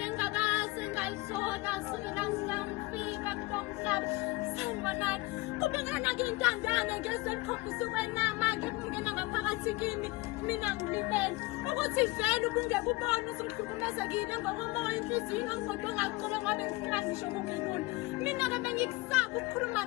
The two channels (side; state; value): right; quieter; 22.3 dB